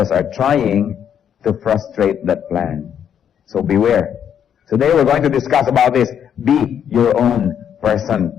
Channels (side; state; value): right; quieter; 8.7 dB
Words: are trying to frustrate that plan. So beware. Today we're going to discuss about this. Be your own person.